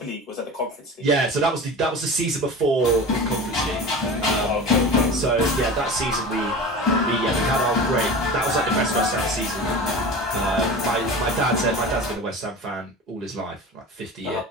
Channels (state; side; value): normal; both; correlation 0.33